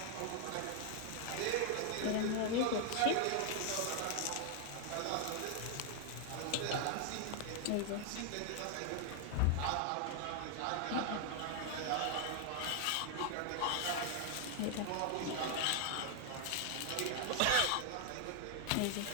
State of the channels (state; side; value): different; both; correlation 0.00